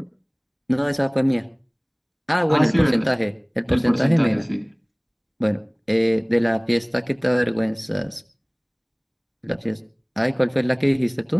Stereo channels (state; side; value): identical; both; correlation 1.00